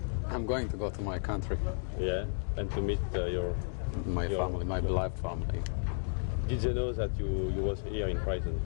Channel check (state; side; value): silent; right; digital silence